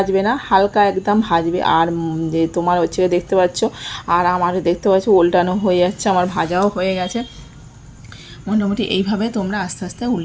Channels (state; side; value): identical; both; correlation 1.00